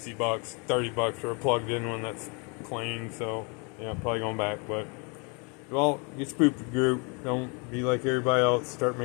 $30 for a plugged in one that's clean. So yeah, I'm probably going back. But well, get spooked group. Don't be like everybody else. Start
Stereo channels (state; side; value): quieter; right; 33.2 dB